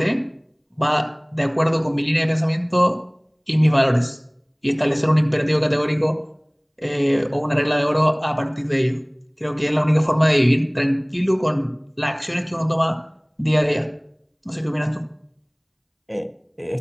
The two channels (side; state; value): both; identical; correlation 1.00